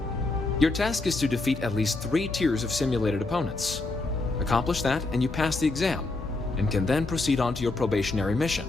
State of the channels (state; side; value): quieter; right; 3.3 dB